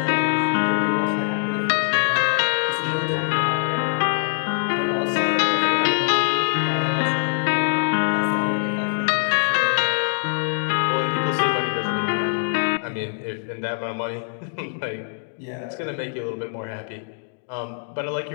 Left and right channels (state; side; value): silent; right; digital silence